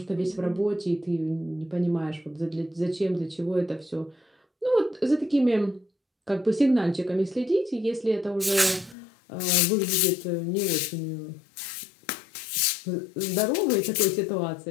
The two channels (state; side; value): drops out; right; at 9.0 s